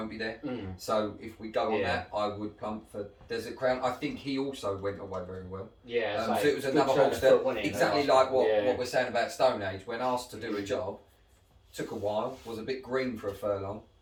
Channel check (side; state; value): both; identical; correlation 1.00